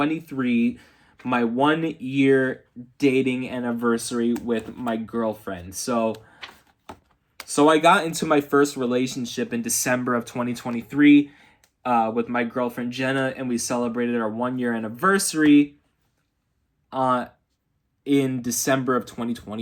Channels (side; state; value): both; identical; correlation 1.00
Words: my 1 year dating anniversary with my girlfriend. So I got into my first relationship in December of 2023 with my girlfriend Jenna, and we celebrated our 1 year anniversary in December of